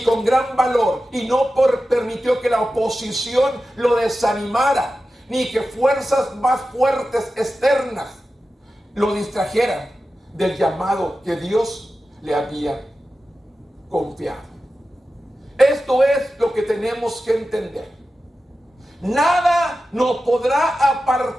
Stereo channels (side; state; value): both; normal; correlation 0.93